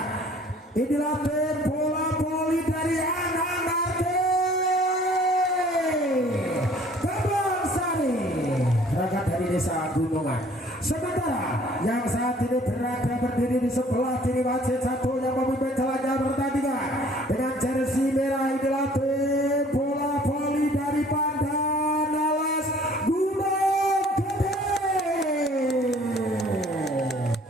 Inilah tim bola voli dari anak-anak Kebon Sari, berangkat dari desa Gunungan. Sementara yang saat ini berada berdiri di sebelah kiri wasit satu yang memimpin jalannya pertandingan dengan jersey merah, inilah tim bola voli dari Pandanalas Gunung Gede.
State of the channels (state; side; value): normal; both; correlation 0.54